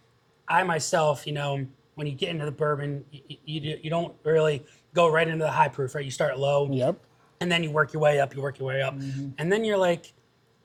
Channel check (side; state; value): both; identical; correlation 1.00